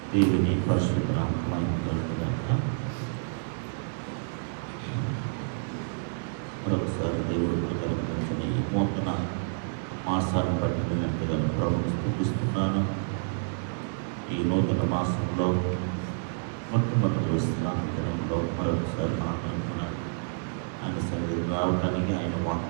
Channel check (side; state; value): left; silent; digital silence